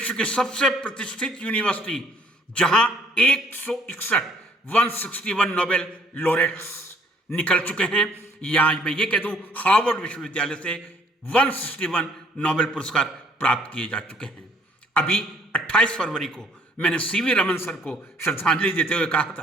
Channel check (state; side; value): normal; both; correlation 0.61